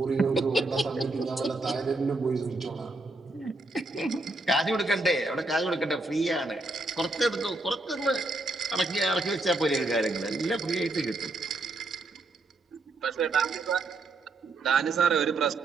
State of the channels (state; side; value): quieter; left; 3.0 dB